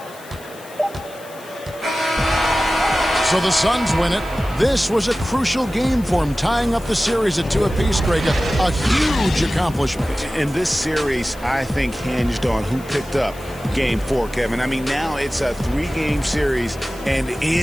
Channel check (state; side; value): noise; left; hiss, 21 dB below the sound